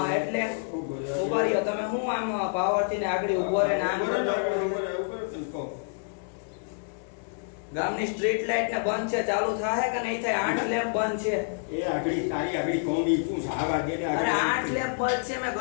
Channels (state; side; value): silent; right; 59 dB below the other